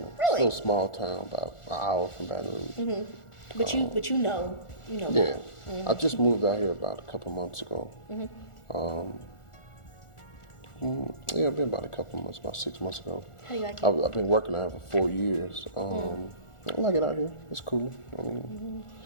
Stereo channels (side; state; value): right; late; 1.4 ms